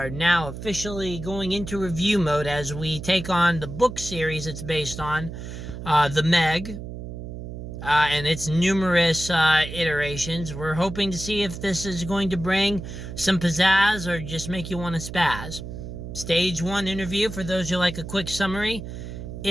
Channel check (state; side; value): noise; right; hum, 9 dB below the sound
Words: now officially going into review mode as we take on the book series it's based on, The Meg, and its numerous iterations. We're hoping to see if this is going to bring some pizzazz or just make you want to spaz. Stage 1 interview, for those who like a quick summary,